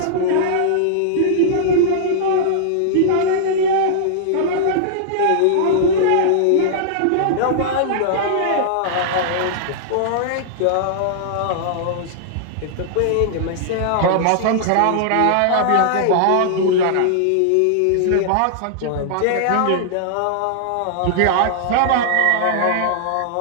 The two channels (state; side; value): different; both; correlation -0.01